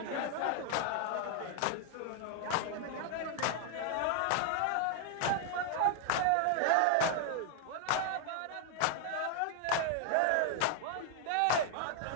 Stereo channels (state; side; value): different; both; correlation 0.00